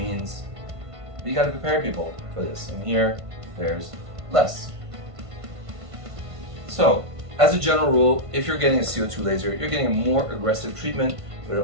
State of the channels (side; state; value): left; late; 1.5 ms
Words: we got to prepare people for this. And here, there's less. So, as a general rule, if you're getting a CO2 laser, you're getting a more aggressive treatment, but